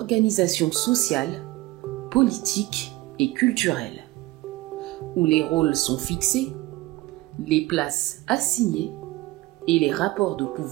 sociale, politique et culturelle, où les rôles sont fixés, les places assignées et les rapports de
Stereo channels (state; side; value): quieter; left; 19.1 dB